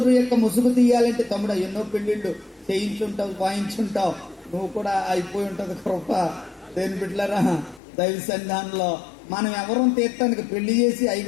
యొక్క ముసుగు తీయాలంటే తమ్ముడు ఎన్నో పెళ్లిళ్ళు చేయించుంటావు, వాయించుంటావు, నువ్వు కూడా అయిపోయి ఉంటది కృప. దేని బిడ్డలారా, దైవ సన్నిధానంలో మనం ఎవరం తీర్థానికి పెళ్లి చేసి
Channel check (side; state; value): right; drops out; at 7.8 s